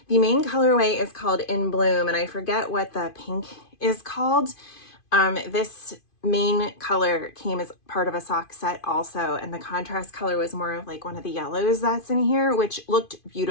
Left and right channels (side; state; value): right; late; 2.5 ms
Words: The main colorway is called In Bloom, and I forget what the pink is called. This main color came as part of a sock set also, and the contrast color was more of like one of the yellows that's in here, which looked